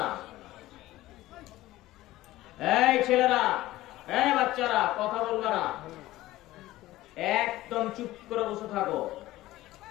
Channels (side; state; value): right; quieter; 16.5 dB